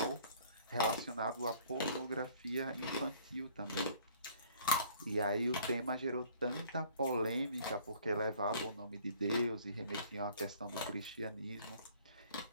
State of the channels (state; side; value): inverted; both; correlation -0.55